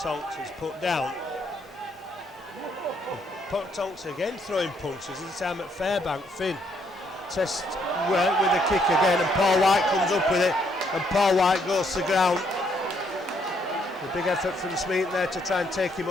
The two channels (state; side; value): normal; both; correlation 0.71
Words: Tonks is put down. Tonks again throwing punches, this time at Fairbank. Finn tests with a kick again, and Paul White comes up with it, and Paul White goes to ground. A big effort from Smeaton there to try and take him